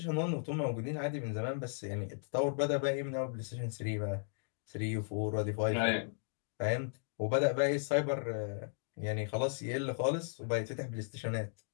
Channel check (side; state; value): right; silent; digital silence